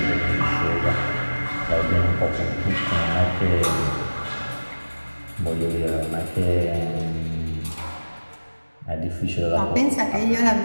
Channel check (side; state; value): both; inverted; correlation -1.00